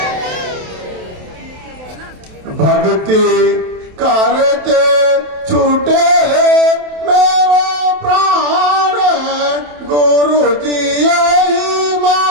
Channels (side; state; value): left; late; 27 ms